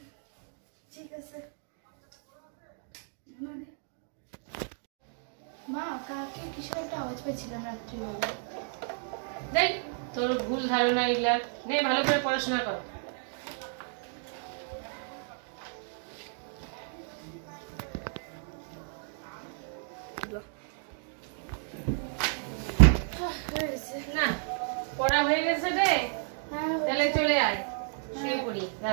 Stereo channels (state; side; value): silent; left; 56 dB below the other